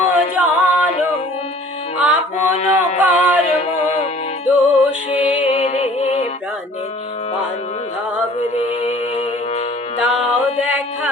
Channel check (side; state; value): both; normal; correlation 0.50